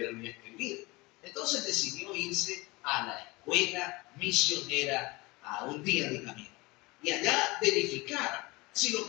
ni escribir. Entonces decidió irse a la escuela misionera a un día de camino. Y allá verificar si lo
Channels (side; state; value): right; quieter; 23.4 dB